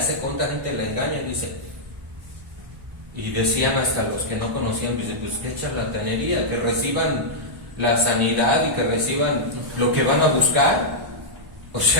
cuánta gente le engaña. Dice, y decían hasta los que no conocían, dice, pues qué charlatanería, que reciban la sanidad y que reciban lo que van a buscar. O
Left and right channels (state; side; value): late; left; 1.1 ms